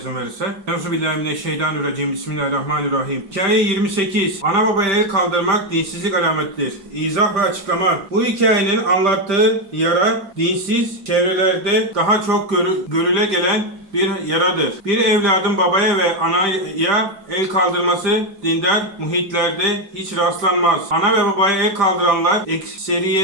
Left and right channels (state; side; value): late; left; 5.1 ms